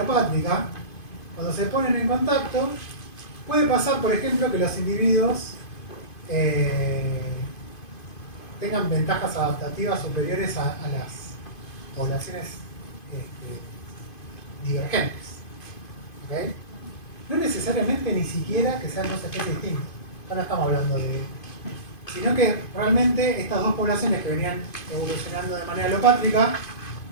cuando se ponen en contacto, puede pasar, por ejemplo, que los individuos tengan ventajas adaptativas superiores a las poblaciones divergentes. ¿Okay? No necesariamente ni siquiera que sean dos especies distintas. Ahora estamos hablando de... Sino que realmente estas dos poblaciones que venían evolucionando de manera alopátrica,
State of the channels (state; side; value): late; right; 2.5 ms